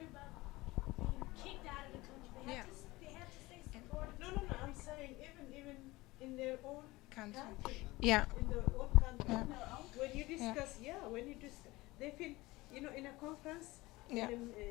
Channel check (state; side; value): quieter; right; 20.4 dB